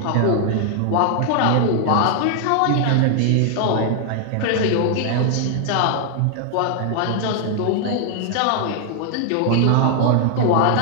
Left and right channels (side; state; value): both; different; correlation 0.00